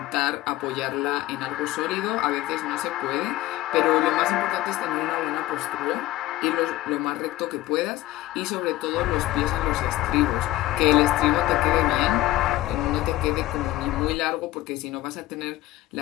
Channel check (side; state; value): right; quieter; 16.3 dB